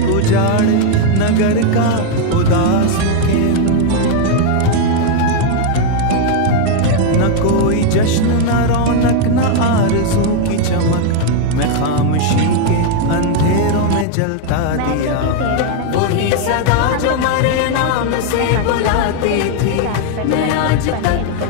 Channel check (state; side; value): different; both; correlation 0.00